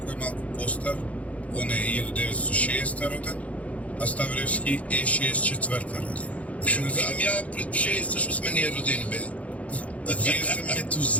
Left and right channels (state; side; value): late; right; 0.066 ms